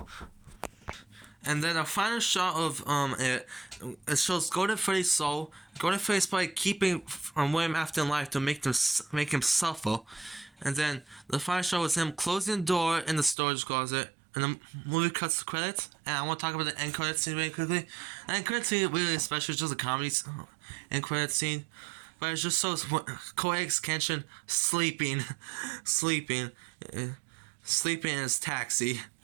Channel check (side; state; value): left; drops out; at 13.4 s